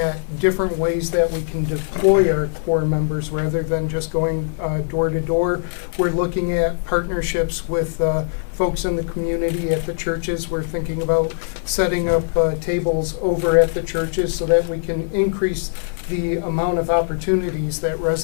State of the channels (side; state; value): right; silent; 56 dB below the other